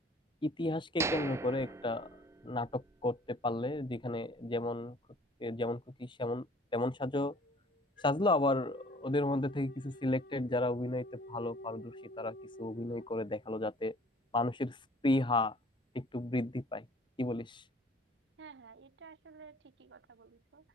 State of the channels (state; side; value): normal; both; correlation 0.54